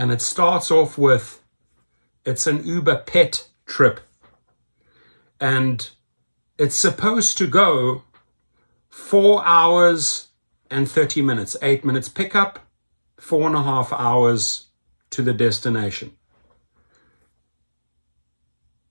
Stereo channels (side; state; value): both; inverted; correlation -1.00